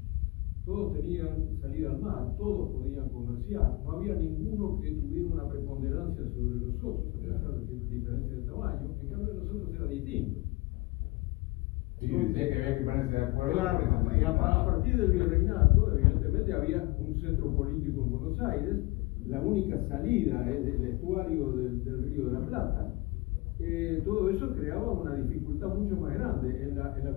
todos tenían salida al mar, todos podían comerciar, no había ninguno que tuviera una preponderancia sobre los otros, a pesar de ciertas diferencias de tamaño. En cambio, nosotros era distinto. Sí, decía que había que ponerse de acuerdo. Claro, y a partir del virreinato, evidentemente, había un centro político en Buenos Aires. La única salida es el estuario del Río de la Plata. Todo eso creaba una dificultad mucho más grande. En la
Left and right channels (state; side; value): quieter; right; 23.1 dB